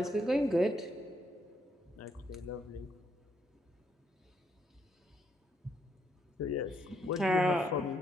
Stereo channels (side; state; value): both; normal; correlation 0.75